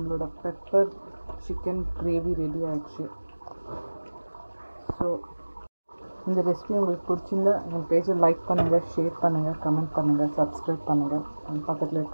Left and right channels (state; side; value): inverted; both; correlation -1.00